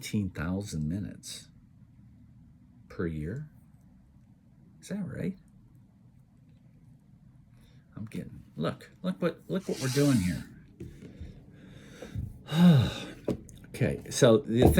minutes per year. Is that right? I'm getting, look what we're doing here. Okay, so the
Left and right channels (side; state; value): both; identical; correlation 1.00